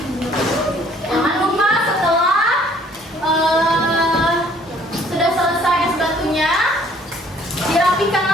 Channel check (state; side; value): normal; both; correlation 0.59